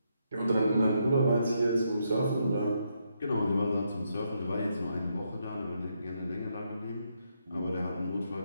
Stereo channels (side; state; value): both; inverted; correlation -0.78